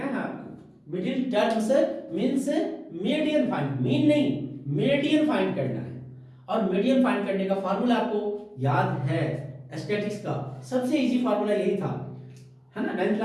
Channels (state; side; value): identical; both; correlation 1.00